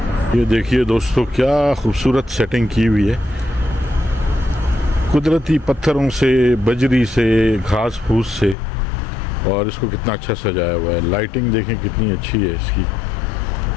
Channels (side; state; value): right; drops out; at 8.6 s